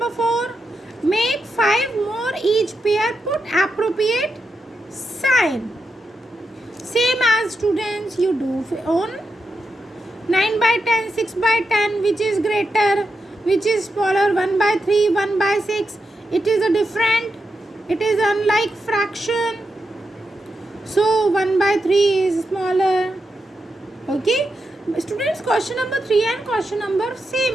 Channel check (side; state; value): both; normal; correlation 0.86